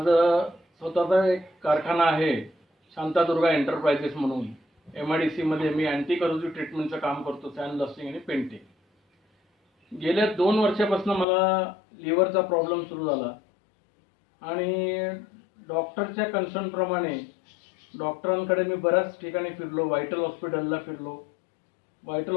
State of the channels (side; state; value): right; drops out; at 11.2 s